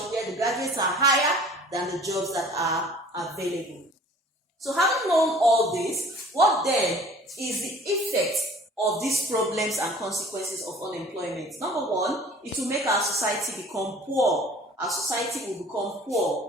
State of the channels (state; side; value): normal; both; correlation 0.48